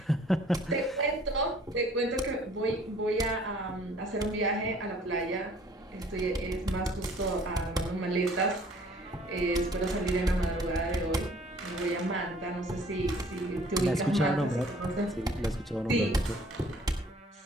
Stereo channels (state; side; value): normal; both; correlation 0.56